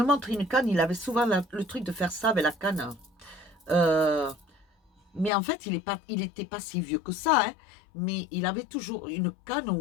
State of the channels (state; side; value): drops out; right; at 5.3 s